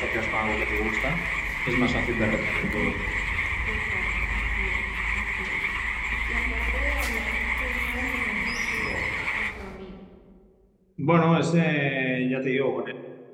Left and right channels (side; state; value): both; identical; correlation 1.00